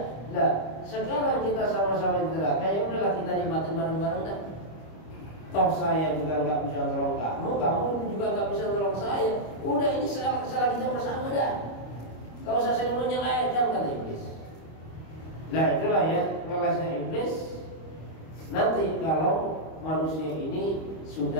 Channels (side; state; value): right; late; 25 ms